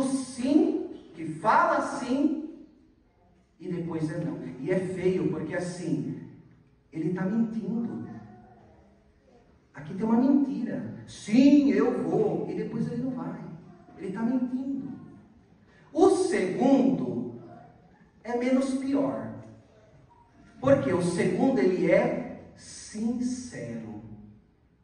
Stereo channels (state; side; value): identical; both; correlation 1.00